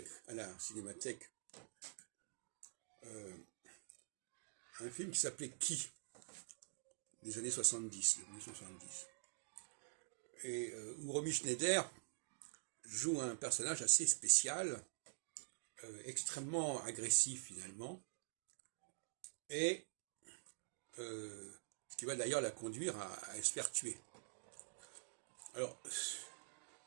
à la cinémathèque, euh, un film qui s'appelait Qui des années 70, 1970, et où Romy Schneider joue un personnage assez spécial, extrêmement agressif finalement, et ce qui va d'ailleurs la conduire à se faire tuer. Alors,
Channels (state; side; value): silent; left; digital silence